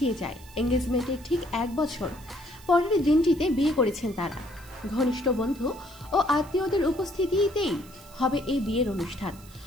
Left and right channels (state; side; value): noise; right; hiss, 23 dB below the sound